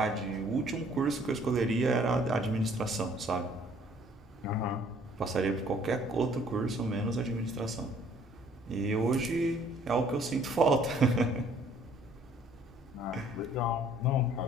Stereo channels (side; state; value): both; normal; correlation 0.59